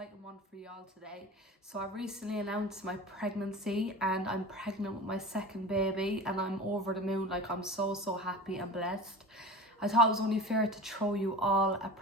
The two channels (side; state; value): both; normal; correlation 0.34